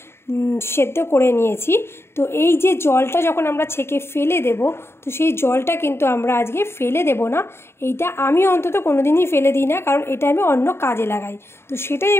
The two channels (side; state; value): right; late; 0.12 ms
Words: সেদ্ধ করে নিয়েছি। তো এই যে জলটা যখন আমরা ছেঁকে ফেলে দেব, তো সেই জলটা কিন্তু আমরা আজকে ফেলে দেব না। এইটা আমি অন্তত কোনো দিনই ফেলে দিই না, কারণ এটা আমি অন্য কাজে লাগাই। তো সেটাই